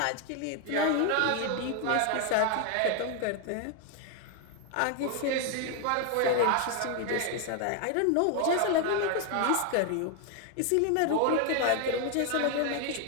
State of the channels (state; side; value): different; both; correlation 0.01